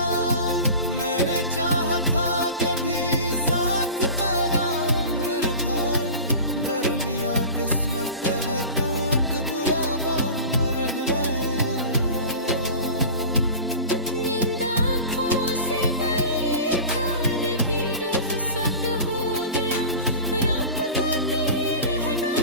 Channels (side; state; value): both; inverted; correlation -0.35